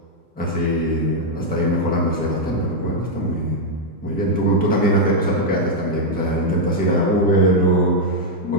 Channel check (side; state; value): both; normal; correlation -0.02